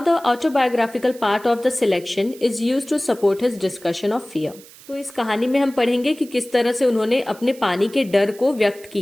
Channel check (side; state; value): right; noise; hiss, 21 dB below the sound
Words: the autobiographical part of the selection is used to support his discussion of fear. तो इस कहानी में हम पढ़ेंगे कि किस तरह से उन्होंने अपने पानी के डर को व्यक्त